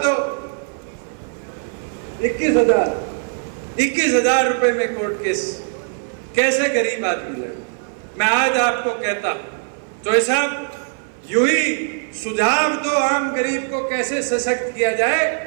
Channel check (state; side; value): silent; left; 58 dB below the other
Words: दो, 21,000 रुपए में कोर्ट केस कैसे गरीब आदमी लड़े। मैं आज आपको कहता हूं तो ऐसा यूं ही सुझाव दो, आम गरीब को कैसे सशक्त किया